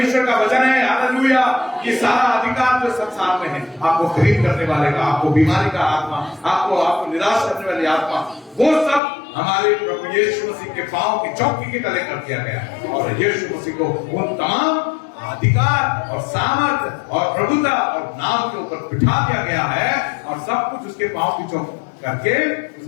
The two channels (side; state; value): right; drops out; at 9.0 s